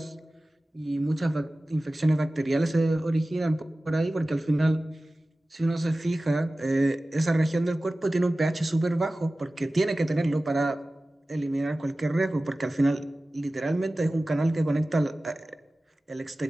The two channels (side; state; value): both; normal; correlation 0.96